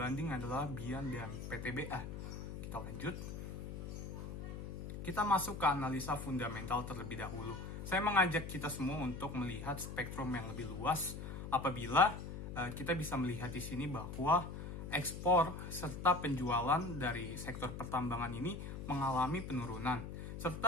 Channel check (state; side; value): noise; left; hum, 7 dB below the sound